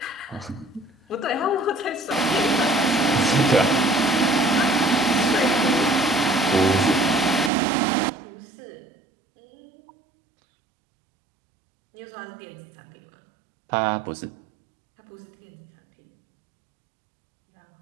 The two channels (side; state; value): left; drops out; at 7.5 s